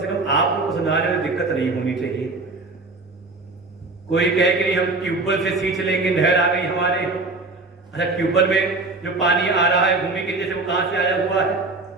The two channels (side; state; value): left; quieter; 3.4 dB